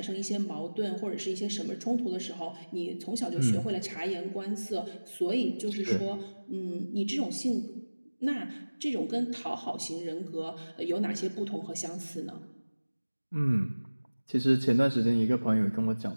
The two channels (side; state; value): both; inverted; correlation -1.00